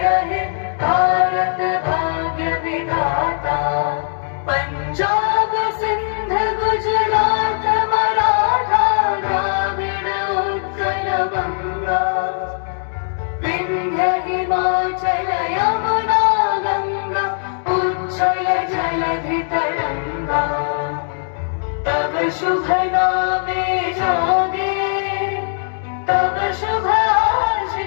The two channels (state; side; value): silent; right; digital silence